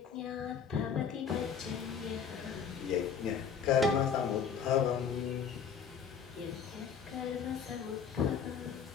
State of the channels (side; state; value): right; quieter; 6.9 dB